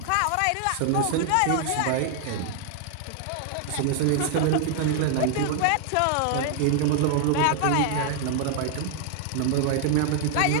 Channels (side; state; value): both; different; correlation 0.00